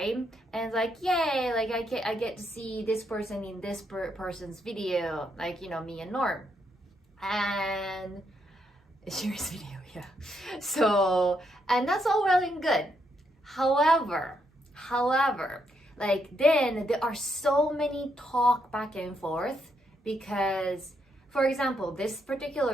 And it's like, yay, like I get to see this person in this person's video, like, you know, me and Norm. And serious video, yeah. So, and that's all well and good. However, like then there are so many talk back and forth, because, for example, this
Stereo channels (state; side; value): normal; both; correlation 0.77